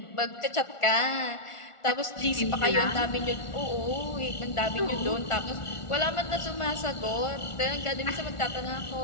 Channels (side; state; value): right; late; 1.4 ms